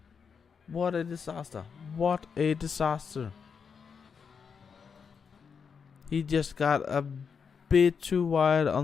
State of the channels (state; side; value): quieter; right; 6.2 dB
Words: What a disaster. What a disaster. He just got a bit too wide